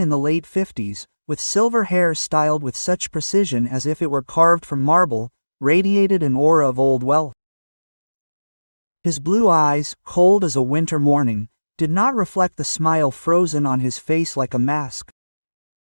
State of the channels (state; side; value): inverted; both; correlation -1.00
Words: the late 50s, with silver hair styled with such precision as if it were carved from marble, radiated an aura of old wealth. His blue eyes, cold as a winter morning, did not reflect the smile frozen on his face like a mask.